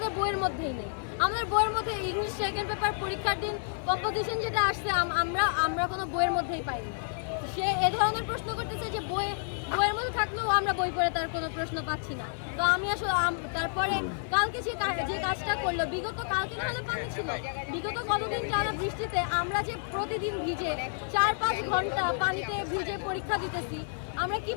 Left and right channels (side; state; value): right; silent; 58 dB below the other